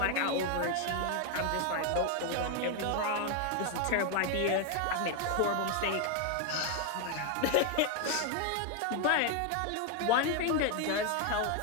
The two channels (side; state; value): both; different; correlation 0.01